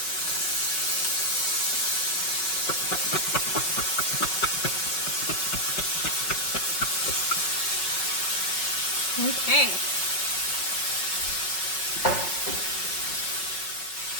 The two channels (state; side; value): late; right; 5.4 ms